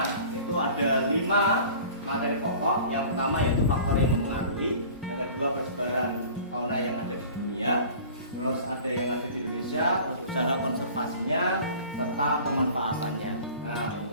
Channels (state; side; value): inverted; both; correlation -0.43